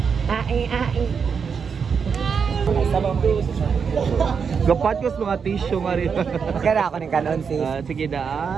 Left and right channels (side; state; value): left; quieter; 6.2 dB